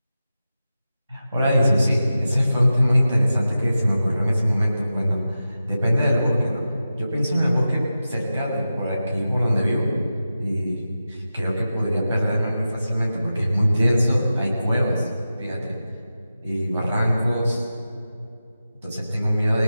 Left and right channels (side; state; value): both; inverted; correlation -0.92